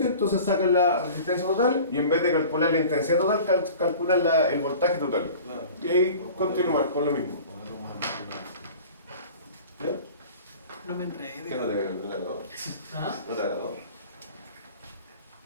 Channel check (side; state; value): both; inverted; correlation -0.42